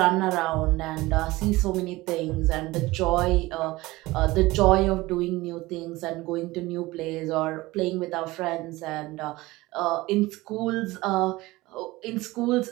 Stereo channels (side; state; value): left; quieter; 19.9 dB